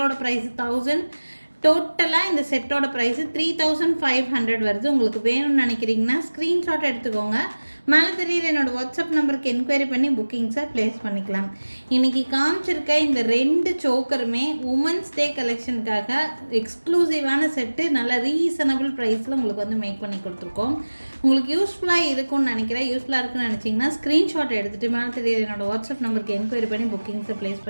ப்ரைஸ் 1000. டோட்டலாக இந்த செட்டோட ப்ரைஸு 3500 வருது. உங்களுக்கு வேணும்னு நினைக்கிறீங்கன்னா ஸ்க்ரீன்ஷாட் எடுத்துக்கோங்க. மேலே தெரியுற என்னோடய வாட்ஸ்அப் நம்பருக்கு என்கொயரி பண்ணி புக்கிங்ஸை ப்ளேஸ் பண்ணிக்கலாம். இன்றைக்கி காமிச்சிருக்க இந்த 2 சோக்கருமே உமன்ஸ் டே கலெக்ஷனுக்காக எக்ஸ்க்ளூசிவான செட்டு. நல்ல ரீசனபிள் ப்ரைஸில் உங்களுக்கு வந்து மேக் பண்ணி கொடுத்துருக்கோம். உங்களுக்கு யூஸ்ஃபுல்லாக இருக்கும்னு நினைக்கிறேன். யூஸ்ஃபுல்லாக இருக்குன்னு நினச்சிங்கன்னா ஸ்க்ரீன்ஷாட் எடுத்துகிட்டு மேலே தெரியுற என்னோடய வாட்ஸ்அப் நம்பருக்கு என்கொயரி பண்ணி புக்கிங்ஸை ப்ளேஸ்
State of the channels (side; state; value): both; inverted; correlation -1.00